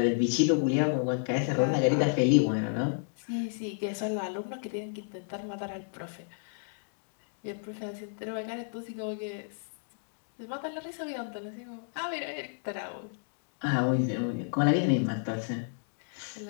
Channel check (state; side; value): silent; right; digital silence